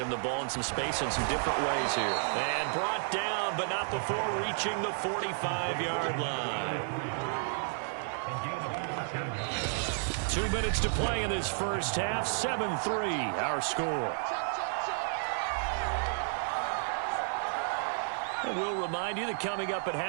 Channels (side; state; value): left; silent; 57 dB below the other